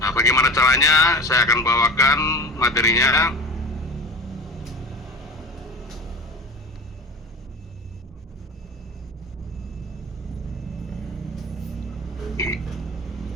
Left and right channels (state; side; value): normal; both; correlation 0.34